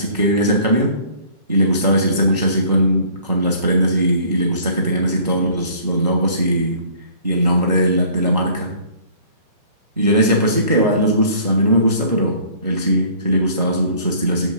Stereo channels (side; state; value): both; inverted; correlation -0.53